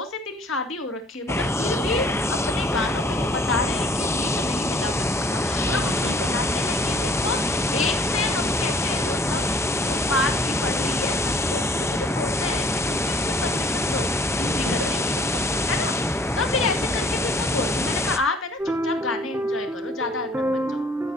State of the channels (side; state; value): both; normal; correlation 0.55